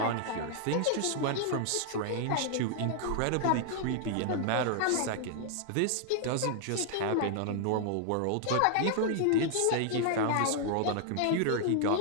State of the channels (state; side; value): different; both; correlation -0.01